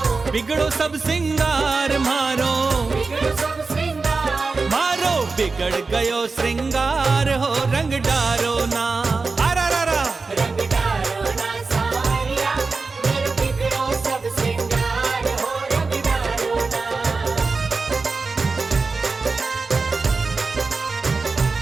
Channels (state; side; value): quieter; left; 4.1 dB